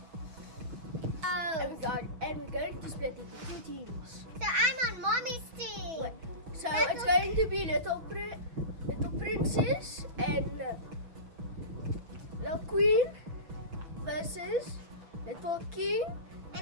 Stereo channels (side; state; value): left; late; 6.2 ms